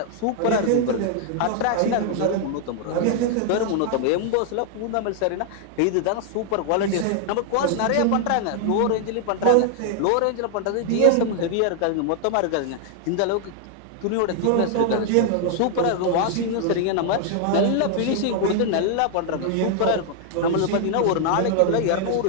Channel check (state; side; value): different; both; correlation 0.00